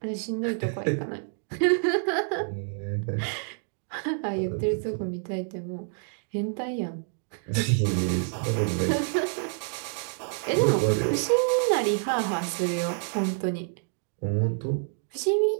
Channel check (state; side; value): silent; left; digital silence